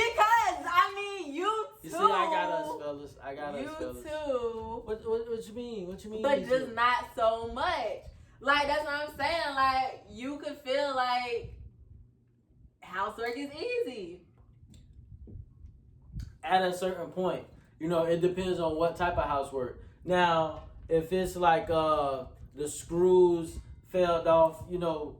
I mean, you too. You see, I got us, fellas. You too. What you mean? What you mean? But just not so much. Like, that's what I'm saying. Like, you could feel like housework is easy. At a certain point. It depends on what type of housework. Now, if it's like the screws fell off,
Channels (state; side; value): identical; both; correlation 1.00